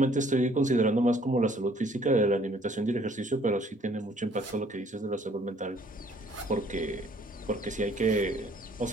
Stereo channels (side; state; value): both; normal; correlation 0.60